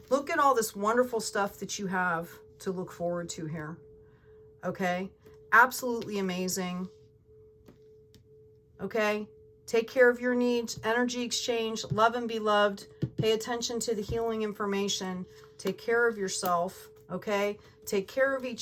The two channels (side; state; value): both; identical; correlation 1.00